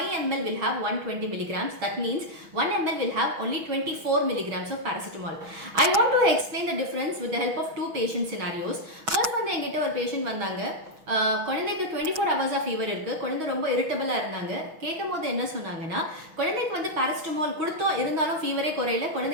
ml will have 120 milligrams. That means 1 ml will have only 24 milligrams of paracetamol. I want to explain the difference with the help of two patient scenarios. First வந்து என்கிட்ட ஒரு patient வந்தாங்க. குழந்தைக்கு 24 hours of fever இருக்கு. குழந்தை ரொம்ப இரிட்டபிளா இருந்தாங்க. கேட்கும்போது என்ன சொன்னாங்கன்னா குழந்தைக்கு வந்து பாராசிட்டமால் கொடுத்தோம் இருந்தாலும் ஃபீவரே குறையல,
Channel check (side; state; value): left; late; 6.3 ms